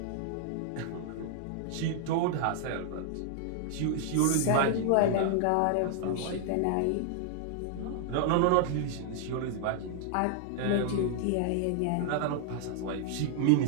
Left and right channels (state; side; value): different; both; correlation -0.01